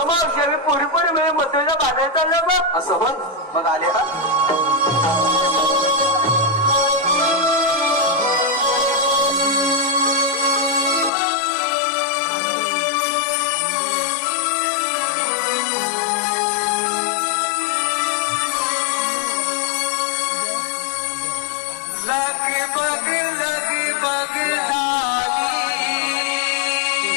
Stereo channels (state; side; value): drops out; right; at 11.1 s